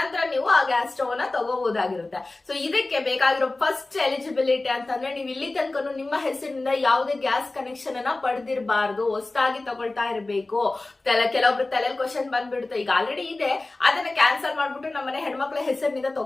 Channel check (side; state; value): right; quieter; 3.1 dB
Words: ನೀವು ಆ ಗ್ಯಾಸ್ ಸ್ಟವ್ ನ ತಗೋಬಹುದಾಗಿರುತ್ತೆ. ಸೊ ಇದಕ್ಕೆ ಬೇಕಾಗಿರೋ ಫಸ್ಟ್ ಎಲಿಜಿಬಿಲಿಟಿ ಅಂತಂದ್ರೆ ನೀವು ಇಲ್ಲಿ ತನಕ ನಿಮ್ಮ ಹೆಸರಿನಿಂದ ಯಾವುದೇ ಗ್ಯಾಸ್ ಕನೆಕ್ಷನ್ ಅನ್ನ ಪಡೆದಿರಬಾರ್ದು. ಹೊಸದಾಗಿ ತಗೊಳ್ತಾ ಇರಬೇಕು. ಕೆಲವೊಬ್ರು ತಲೆ ಬಂದ್ಬಿಡುತ್ತೆ. ಈಗ ಆಲ್ರೆಡಿ ಇದೆ, ಅದನ್ನ ಕ್ಯಾನ್ಸಲ್ ಮಾಡ್ಬಿಟ್ಟು ನಮ್ಮನೆ ಹೆಣ್ಮಕ್ಳ ಹೆಸರಿನಿಂದ